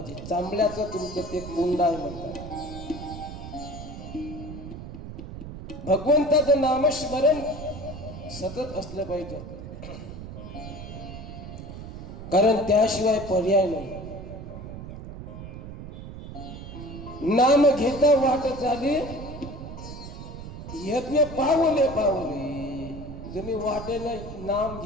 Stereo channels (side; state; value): right; noise; rumble, 11 dB below the sound